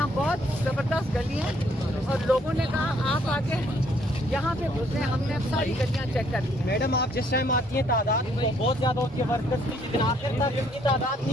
बहुत ज़बरदस्त गली है और लोगों ने कहा आप आके यहाँ पे घुसे। हमने अब सारी गलियाँ चेक कर ली। मैडम आप जिस टाइम आती हैं तादाद तो बहुत ज़्यादा होती है वर्कर्स की, लेकिन आखिर तक इनकी तादाद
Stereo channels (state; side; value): normal; both; correlation 0.66